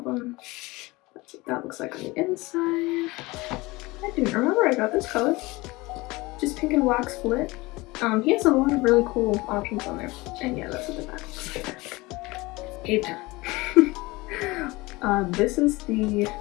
That's what that looks like on the inside. I didn't remember I got this color. Just pink and black split. He has a lot of really cool options on there. And yeah, that's what the back looks like. Cave Town. This is the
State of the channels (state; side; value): quieter; right; 22.1 dB